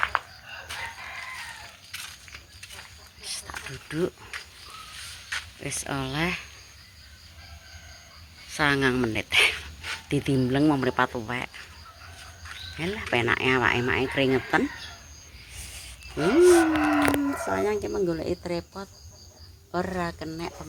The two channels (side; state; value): both; identical; correlation 1.00